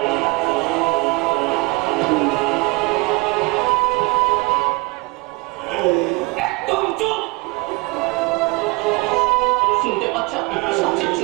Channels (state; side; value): quieter; left; 25.5 dB